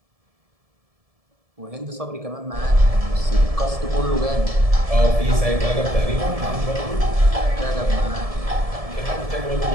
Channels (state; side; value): late; left; 1.7 ms